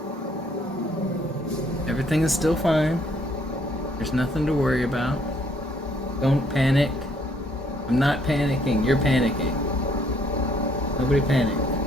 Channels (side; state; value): both; normal; correlation 0.66